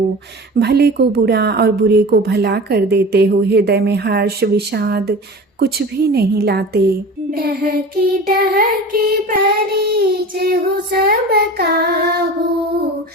भले को बुरा और बुरे को भला कर देते हो, हृदय में हर्ष विषाद कुछ भी नहीं लाते। डहकी परिचय हो सब काहू,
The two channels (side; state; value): both; normal; correlation 0.35